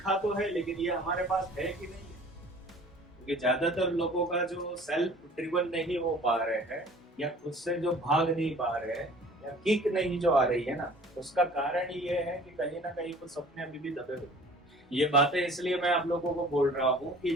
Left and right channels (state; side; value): normal; both; correlation 0.48